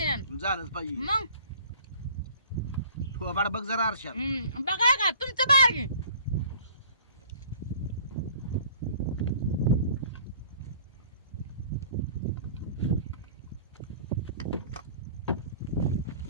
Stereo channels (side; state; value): both; inverted; correlation -0.50